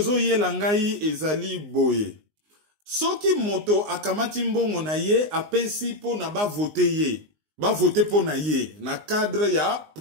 Langai ezali boye. Soki moto akamati mbongo na ye apesi po na ba vote ye. Ba vote po na ye na cadre ya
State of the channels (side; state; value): left; late; 19 ms